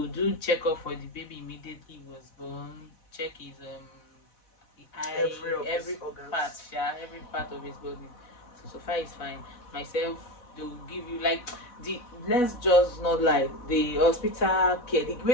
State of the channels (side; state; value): right; late; 4.1 ms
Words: do checkup for the baby immediately he was born. Check his every part of his body. So far it's fine. Myself, they will give you like let's just not like the hospital care, the